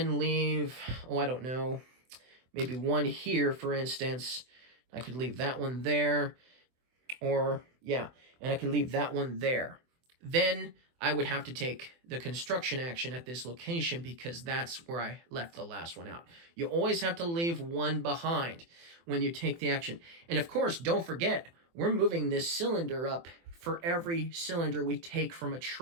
leave, oh, I don't know, maybe 1 here, for instance. I could leave that one there, or, yeah, and I could leave that one there. Then I would have to take the construction action at this location because that's where I left the last one out. You always have to leave one behind when you take the action. And of course, don't forget, we're moving this cylinder up for every cylinder we take from a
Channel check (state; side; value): late; left; 24 ms